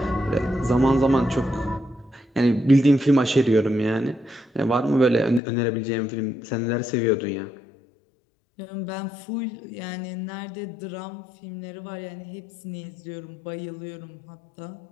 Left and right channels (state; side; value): drops out; right; at 5.4 s